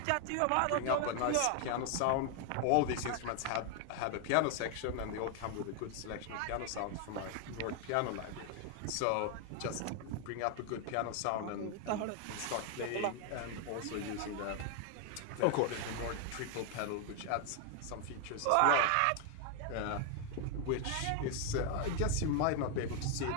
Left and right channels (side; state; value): both; different; correlation 0.00